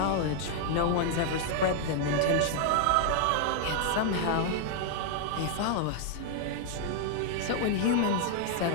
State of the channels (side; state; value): both; different; correlation 0.00